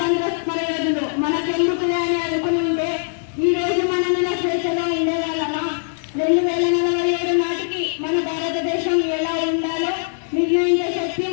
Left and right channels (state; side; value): silent; right; digital silence